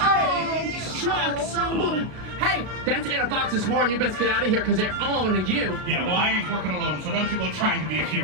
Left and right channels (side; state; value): left; late; 32 ms